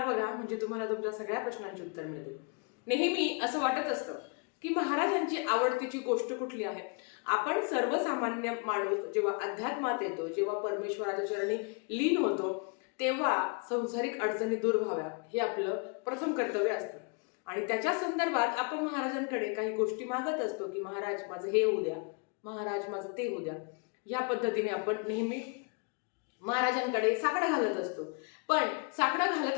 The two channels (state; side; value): quieter; right; 33.1 dB